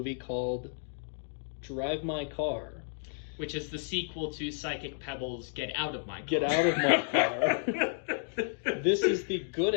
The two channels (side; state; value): right; silent; digital silence